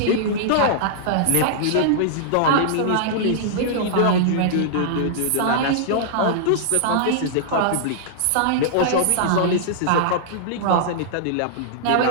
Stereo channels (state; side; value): different; both; correlation -0.02